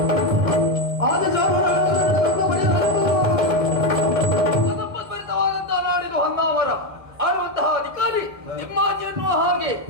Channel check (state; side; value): late; left; 1.1 ms